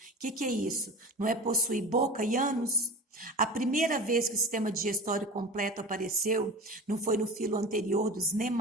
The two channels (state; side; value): normal; both; correlation 0.33